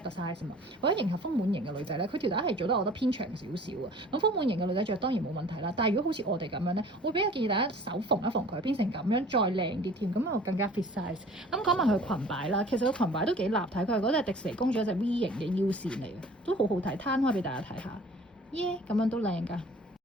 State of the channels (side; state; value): both; normal; correlation 0.48